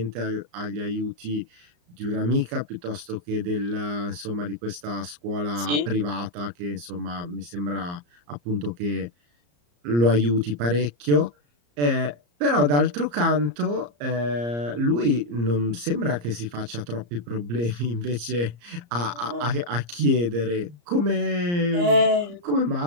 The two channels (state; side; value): late; left; 34 ms